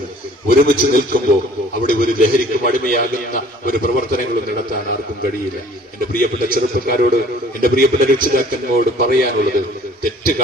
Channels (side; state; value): both; normal; correlation 0.52